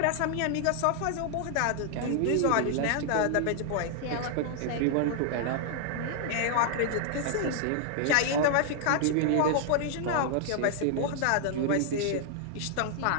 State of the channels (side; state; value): both; different; correlation 0.00